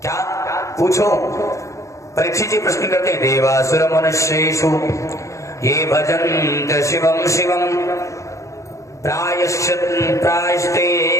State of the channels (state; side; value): late; right; 0.15 ms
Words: क्या? पूछो। परीक्षित जी प्रश्न करते हैं, देवासुर मनुष्येषु ये भजन्त शिवम शिवम प्रायश्ते